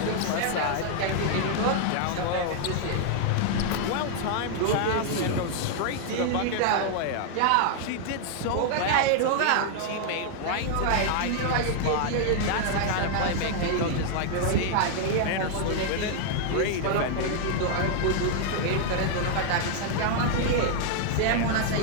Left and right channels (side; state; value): both; different; correlation 0.00